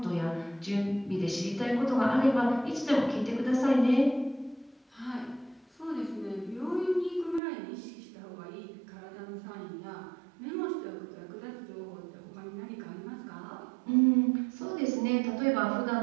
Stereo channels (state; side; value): drops out; left; at 7.4 s